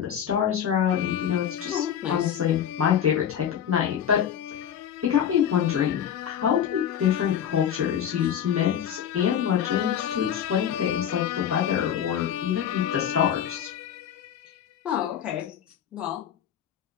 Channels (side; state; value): right; quieter; 9.1 dB